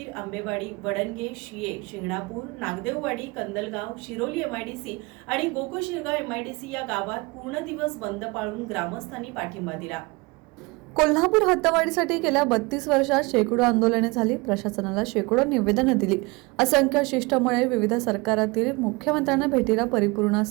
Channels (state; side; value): quieter; left; 25.9 dB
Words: आंबेवाडी, वडणगे, शिये, शिंगणापूर, नागदेववाडी, कंदलगाव, शिरोली एमआयडीसी आणि गोकुशिरगाव एमआयडीसी या गावात पूर्ण दिवस बंद पाळून ग्रामस्थांनी पाठिंबा दिला. कोल्हापूर हद्दवाढीसाठी गेल्या 32 वर्षात शेकडो आंदोलने झाली, प्रशासनाला शेकडो निवेदनं दिली, असंख्य शिष्टमंडळे विविध सरकारातील मुख्यमंत्र्यांना भेटीला परिपूर्ण